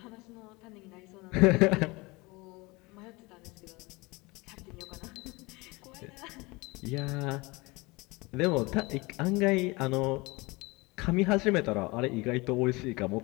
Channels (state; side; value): quieter; right; 24.3 dB